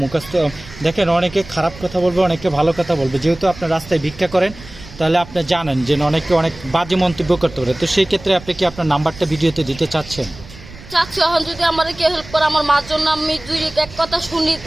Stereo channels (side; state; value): right; noise; rumble, 17 dB below the sound